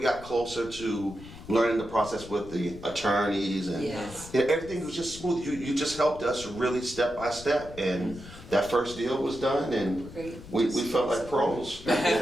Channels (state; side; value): noise; left; rumble, 16 dB below the sound